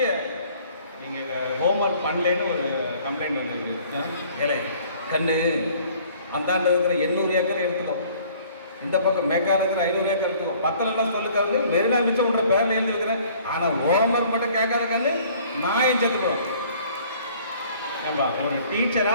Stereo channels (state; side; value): inverted; both; correlation -0.55